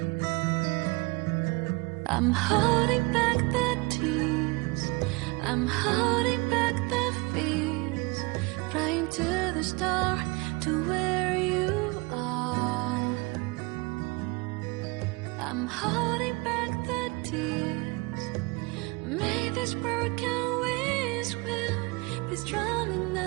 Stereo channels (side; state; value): left; quieter; 26.1 dB